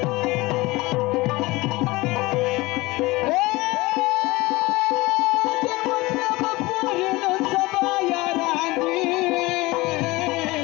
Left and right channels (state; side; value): quieter; right; 21.3 dB